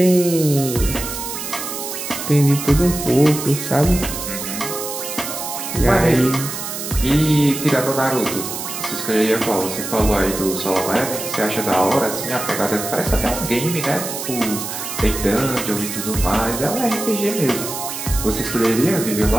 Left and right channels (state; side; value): noise; right; hiss, 6 dB below the sound